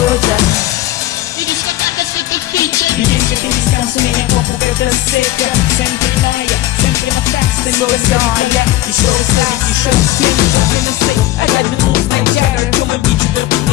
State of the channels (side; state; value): right; quieter; 15.6 dB